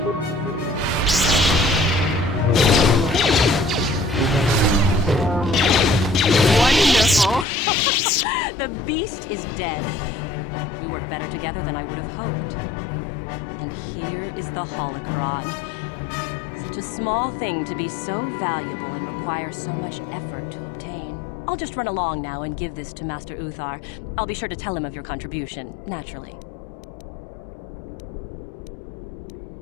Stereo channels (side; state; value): right; drops out; at 7.5 s